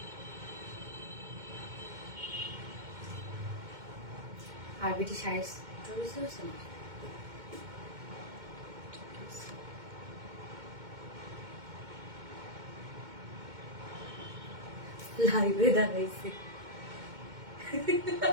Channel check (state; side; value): late; left; 2.2 ms